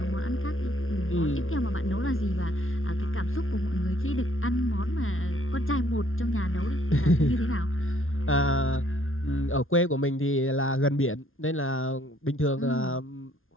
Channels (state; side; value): late; right; 0.60 ms